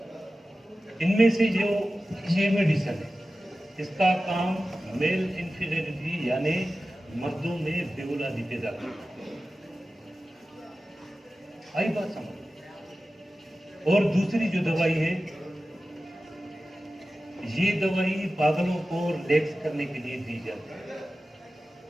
इनमें से जो ये मेडिसिन है इसका काम मेल इन्फीरियरिटी यानी मर्दों में बेऔलादी पैदा करना। आई बात समझ। और दूसरी जो दवाई है ये दवाई पागलों को रिलैक्स करने के लिए दी जाती है।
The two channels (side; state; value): both; normal; correlation 0.95